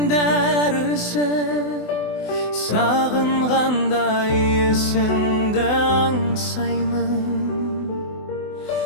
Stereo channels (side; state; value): right; late; 24 ms